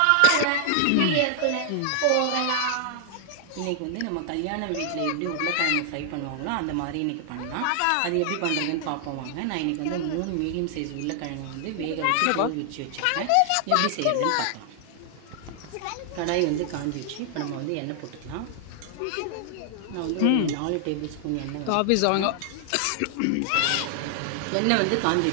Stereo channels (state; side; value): different; both; correlation -0.01